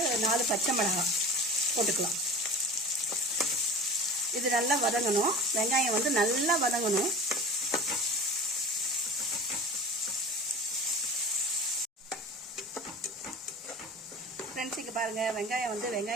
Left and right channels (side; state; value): both; normal; correlation 0.36